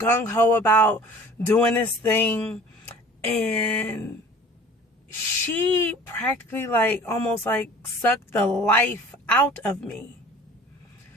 about doing this thing. And she practically almost sucked the life out of me.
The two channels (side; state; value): both; normal; correlation 0.45